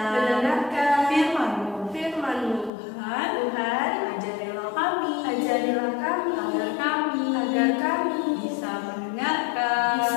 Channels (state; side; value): drops out; right; at 2.7 s